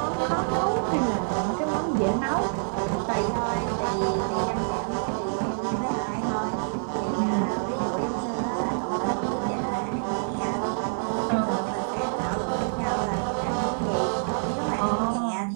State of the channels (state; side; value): silent; left; digital silence